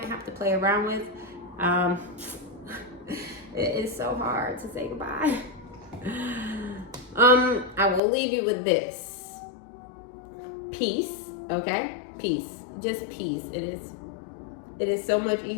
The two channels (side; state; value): right; drops out; at 8.0 s